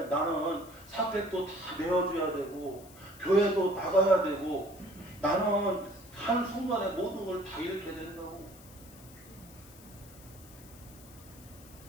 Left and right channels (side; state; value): left; noise; hiss, 21 dB below the sound